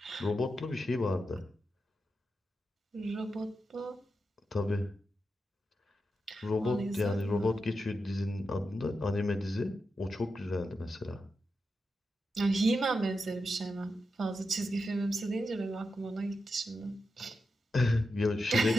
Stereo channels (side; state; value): both; normal; correlation 0.88